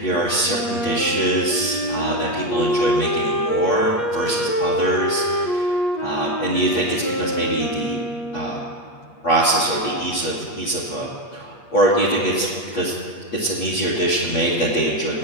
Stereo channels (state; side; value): late; right; 8.4 ms